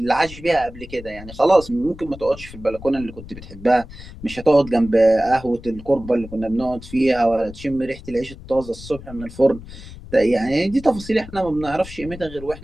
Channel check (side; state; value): left; noise; rumble, 15 dB below the sound